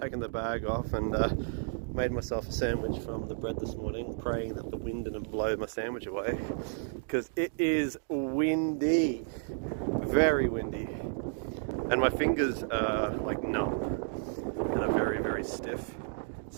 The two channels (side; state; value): left; silent; digital silence